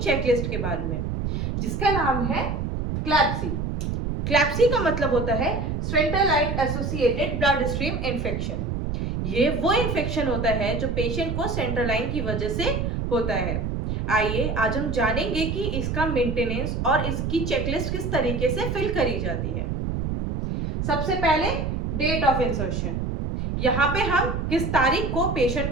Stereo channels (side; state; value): right; noise; rumble, 2 dB below the sound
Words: चेकलिस्ट के बारे में, जिसका नाम है क्लैप्सी। क्लैप्सी का मतलब होता है central associated blood stream infection. ये वो इन्फेक्शन होता है जो पेशेंट को सेंट्रल लाइन की वजह से होता है। आइए आज हम जानेंगे कि इसका मेंटेनेंस और इसकी चेकलिस्ट किस तरीके से फिल करी जाती है। सबसे पहले डेट ऑफ इंसर्शन। यहाँ पे हम किस तारीख को पेशेंट